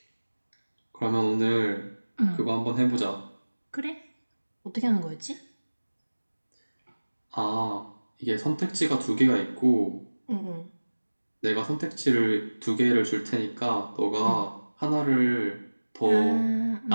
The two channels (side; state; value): both; inverted; correlation -1.00